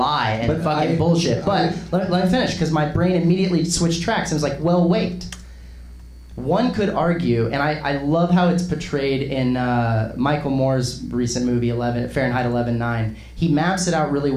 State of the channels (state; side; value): identical; both; correlation 1.00